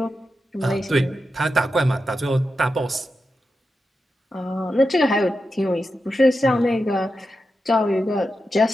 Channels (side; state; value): both; normal; correlation 0.89